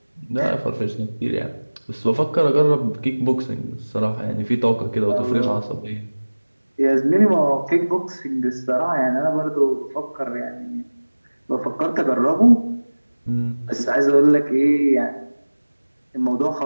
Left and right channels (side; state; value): both; inverted; correlation -1.00